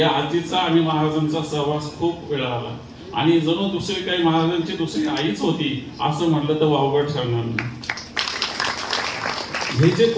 आजीचा आणि महाराजांचा सहवास खूप वेळा आला आणि जणू दुसरी काही महाराजांची दुसरी आईच होती असं म्हटलं तर वावगं ठरणार नाही। हे जे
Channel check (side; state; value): both; identical; correlation 1.00